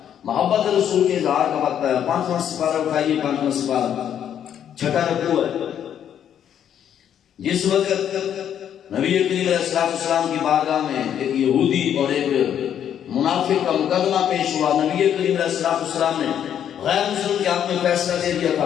محبت رسول کے اظہار کا وقت ہے۔ 5واں سپارہ اٹھائیے، 5واں سپارہ 6واں رکوع ہے۔ جس وقت نبی کریم علیہ السلام کی بارگاہ میں ایک یہودی اور ایک منافق کا مقدمہ پیش ہوا، نبی کریم علیہ السلام نے غیر مسلم کے حق میں فیصلہ دے دیا تھا،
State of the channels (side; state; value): right; quieter; 9.5 dB